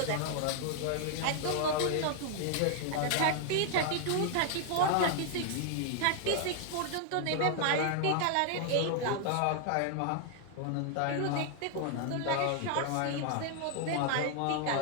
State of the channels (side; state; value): both; different; correlation 0.00